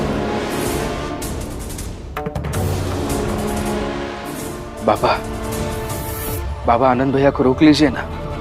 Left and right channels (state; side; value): identical; both; correlation 1.00